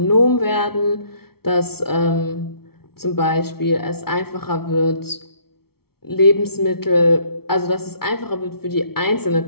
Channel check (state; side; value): late; right; 0.95 ms